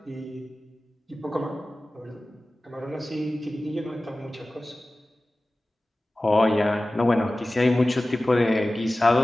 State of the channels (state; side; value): normal; both; correlation 0.96